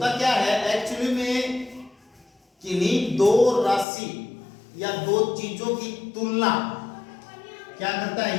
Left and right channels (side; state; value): right; drops out; at 3.9 s